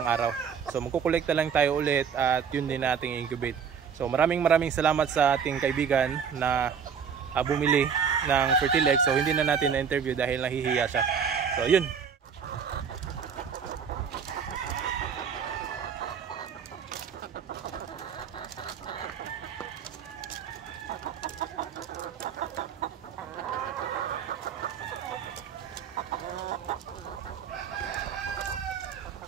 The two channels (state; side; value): quieter; left; 6.9 dB